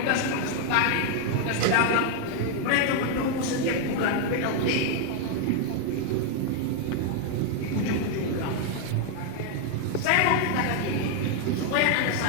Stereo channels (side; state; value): both; different; correlation 0.00